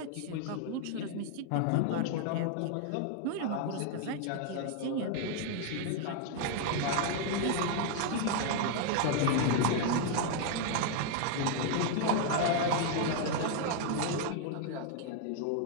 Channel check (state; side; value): different; both; correlation 0.00